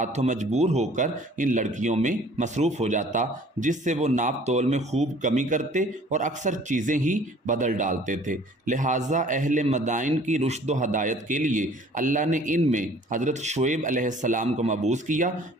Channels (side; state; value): both; normal; correlation 0.52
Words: مجبور ہو کر ان لڑکیوں میں مصروف ہو جاتا، جس سے وہ ناپ تول میں خوب کمی کرتے اور اکثر چیزیں ہی بدل ڈالتے تھے۔ لہٰذا اہل مدائن کی رشد و ہدایت کے لیے اللہ نے ان میں حضرت شعیب علیہ السلام کو مبعوث کیا،